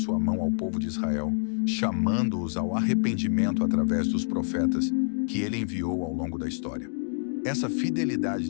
mão ao povo de Israel, chamando-os ao arrependimento através dos profetas que ele enviou ao longo da história. Essa fidelidade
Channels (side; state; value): right; silent; digital silence